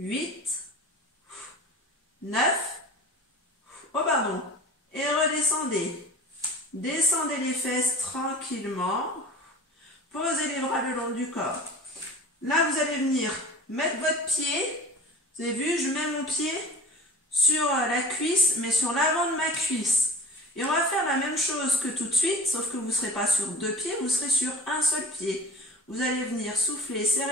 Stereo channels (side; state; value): both; normal; correlation 0.41